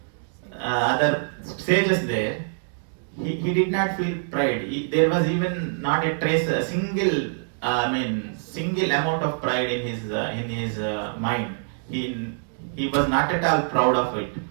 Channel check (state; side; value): silent; left; digital silence